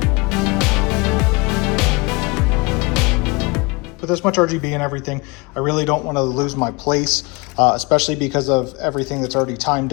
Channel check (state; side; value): quieter; right; 26.8 dB